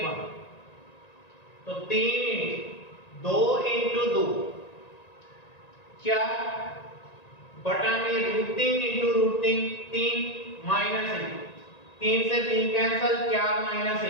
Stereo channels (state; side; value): late; right; 1.9 ms